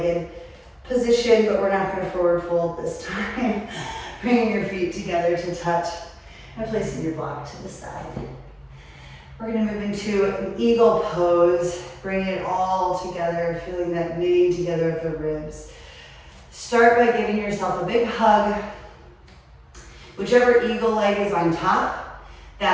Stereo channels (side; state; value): both; identical; correlation 1.00